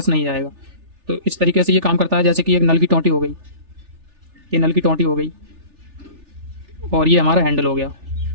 नहीं जाएगा। तो इस तरीके से ये काम करता है। जैसे कि एक नल की टोंटी हो गई, ये नल की टोंटी हो गई और ये हमारा हैंडल हो गया।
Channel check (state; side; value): late; left; 3.4 ms